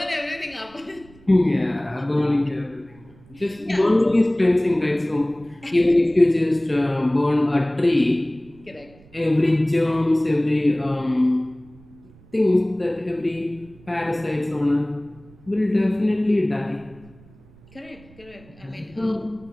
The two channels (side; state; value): right; noise; rumble, 25 dB below the sound